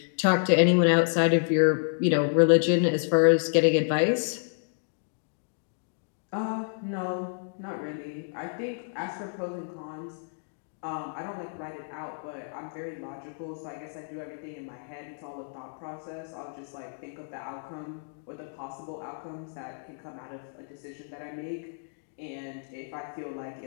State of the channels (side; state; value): right; silent; digital silence